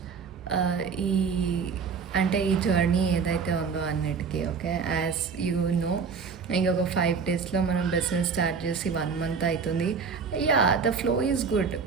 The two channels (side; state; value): left; quieter; 5.7 dB